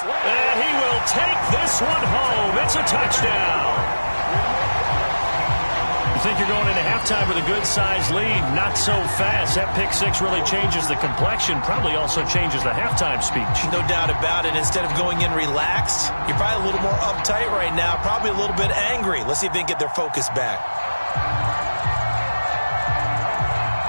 And he will take this one home. It's a touchdown. You think you're going into halftime? halftime with a good-sized lead. Not so fast. That pick six really changes the complexion. Probably also changes the halftime speech. No doubt about it. Instead of going in relaxed, you're probably a little more uptight right now. Probably a little bit angry. Let's see if they can get their focus back.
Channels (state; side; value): inverted; both; correlation -1.00